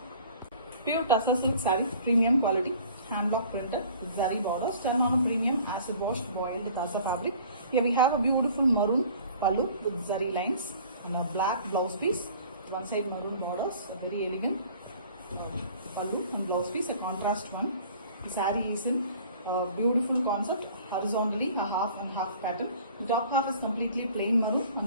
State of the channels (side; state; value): both; inverted; correlation -0.50